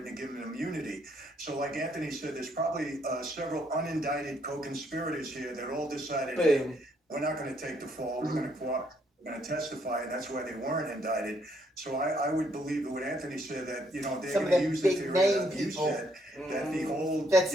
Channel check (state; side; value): normal; both; correlation 0.71